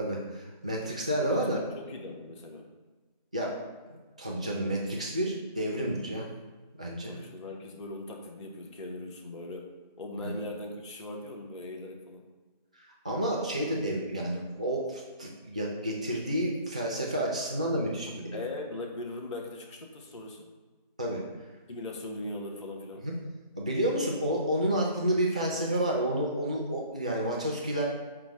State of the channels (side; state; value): both; inverted; correlation -0.48